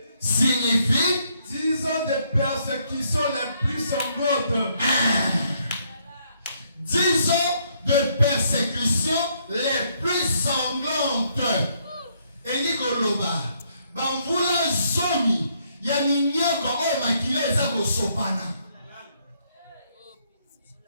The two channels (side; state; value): both; inverted; correlation -0.71